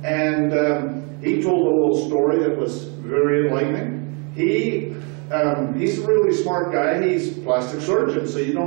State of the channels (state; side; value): quieter; left; 35.0 dB